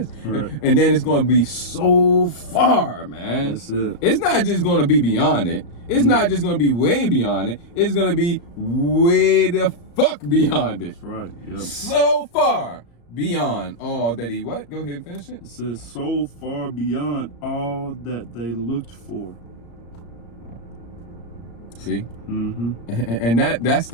And then it's gonna be so far, man. That's it. It's not just gonna be beyond it. It's not just gonna be way beyond it. It's gonna be way the fuck beyond it. That's right. Yep. So far beyond all that he what? Go ahead and finish it. It says, so far beyond all that they looked for. See? And that's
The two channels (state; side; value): late; right; 34 ms